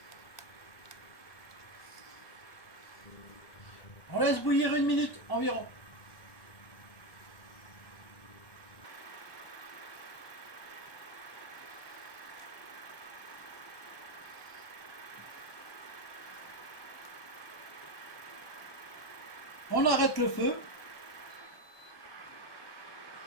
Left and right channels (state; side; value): late; right; 1.2 ms